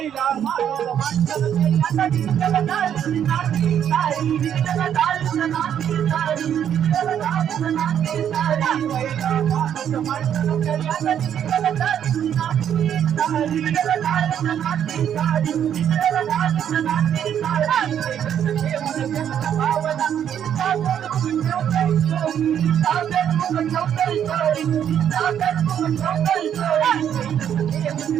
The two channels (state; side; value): quieter; left; 9.4 dB